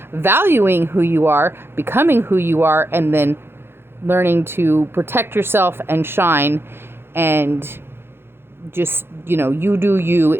valuing who you are, becoming who you are, and then learning to protect yourself and shine, and just, you do you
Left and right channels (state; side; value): late; left; 0.11 ms